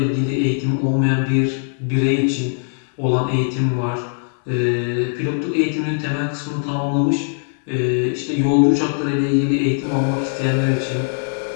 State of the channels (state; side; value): silent; right; 66 dB below the other